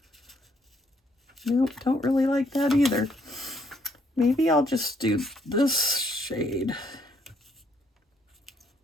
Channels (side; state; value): both; normal; correlation 0.69